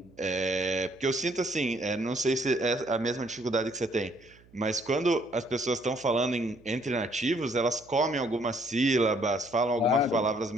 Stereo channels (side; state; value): right; noise; hum, 27 dB below the sound